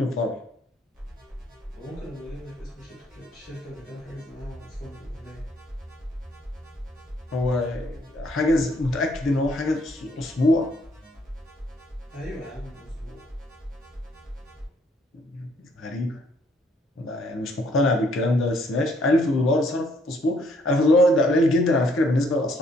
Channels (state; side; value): normal; both; correlation 0.67